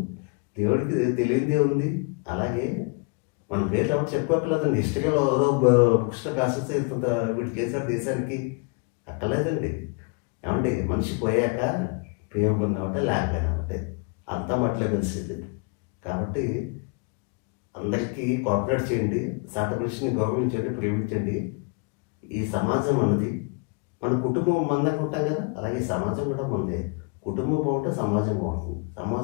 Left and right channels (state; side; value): quieter; right; 32.3 dB